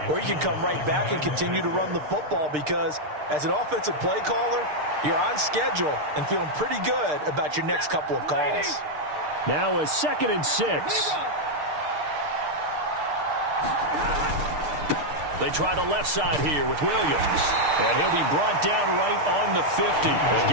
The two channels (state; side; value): late; left; 6.6 ms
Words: or you can come right back and continue to run the football because as an offensive play caller, you're on schedule and feeling pretty good about your next couple of calls. Now a 2nd and 6. They try the left side here with Williams. And he'll be brought down right on the 50. A